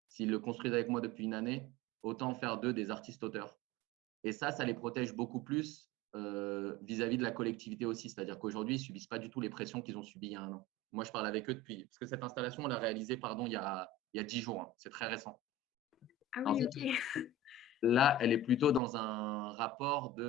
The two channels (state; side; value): normal; both; correlation 0.33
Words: s'ils le construisent avec moi depuis une année, autant faire d'eux des artistes-auteurs. Et ça les protège beaucoup plus vis-à-vis de la collectivité aussi. C'est-à-dire qu'aujourd'hui, ils ne subissent pas du tout les pressions qu'ils ont subies il y a un an. Moi, je parle avec eux depuis… Parce que cette installation, on l'a réalisée il y a 10 jours. Hein. C'est très récent. Ah En oui, fait, ok. là, elle est plutôt dans un rapport